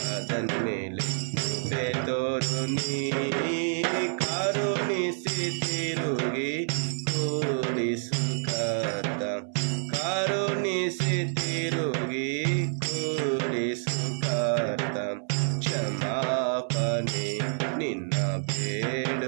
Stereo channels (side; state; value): left; silent; 59 dB below the other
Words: ಮೇಲೆ ಕೃಪೆ ತೋರು ನೀ ಕರುಣಿಸಿ ತಿರುಗಿ ಕೂಡಿಸು ಕರ್ತ ಕರುಣಿಸಿ ತಿರುಗಿ ಕೂಡಿಸು ಕರ್ತ ಕ್ಷಮಾಪಣೆ ನಿನ್ನ